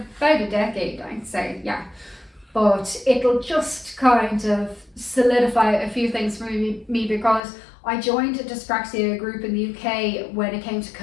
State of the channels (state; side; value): drops out; right; at 7.4 s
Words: about a decade, I'd say, yeah. But it'll just kind of solidify a few things for me because I joined a dyspraxia group in the UK when it came to